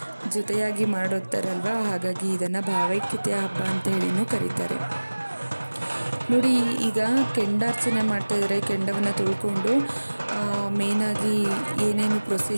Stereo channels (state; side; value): inverted; both; correlation -1.00